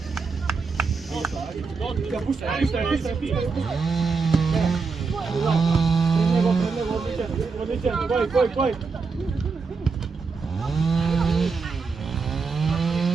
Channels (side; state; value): left; quieter; 4.7 dB